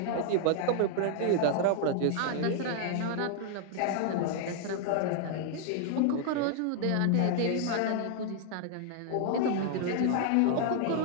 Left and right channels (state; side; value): different; both; correlation 0.00